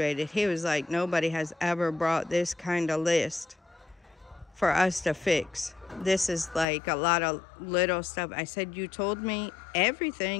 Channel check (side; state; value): right; drops out; at 6.7 s